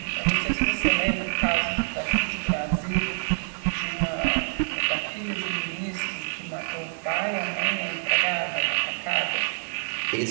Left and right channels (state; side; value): silent; left; digital silence